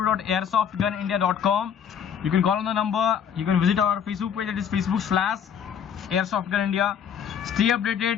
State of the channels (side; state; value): right; quieter; 8.0 dB